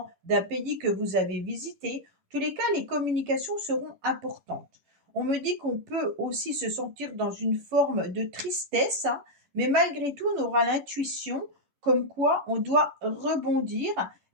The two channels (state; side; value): late; left; 11 ms